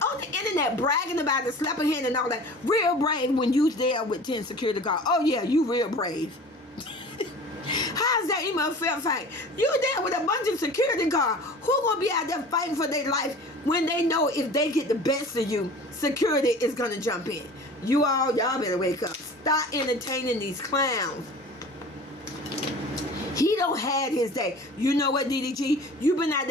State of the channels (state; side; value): normal; both; correlation 0.41